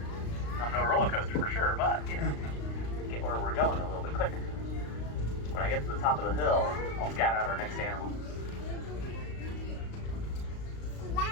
I'm no roller coaster for sure, but, you know, get where we're going a little bit quicker. When I get to the top of the hill, I'll scout out our next animal.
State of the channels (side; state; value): right; late; 35 ms